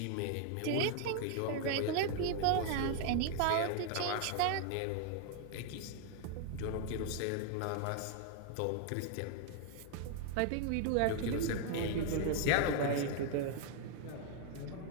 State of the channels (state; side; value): different; both; correlation 0.00